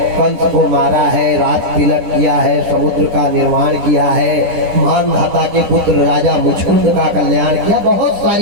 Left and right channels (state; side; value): late; left; 10 ms